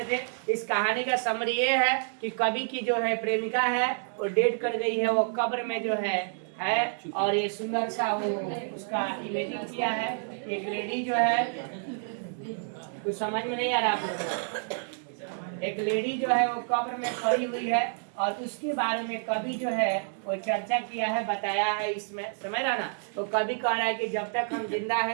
थे। इस कहानी का समरी ये है कि कवि की जो है प्रेमिका है वो डेट कर गई है, वो कब्र में जो है और ये सुंदर सा वो उसका इमेजिंग किया है। एक लेडी जो है, कुछ समझ में नहीं आ रहा आप लोग, एक लेडी जो है वो कब्र में पड़ी हुई है और उसके बारे में कवि जो है वो चर्चा किया है, बताया है इसमें, समझ रहा ना। तो कवि कह रहा है कि जब तक हम जिंदा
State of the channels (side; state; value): left; silent; digital silence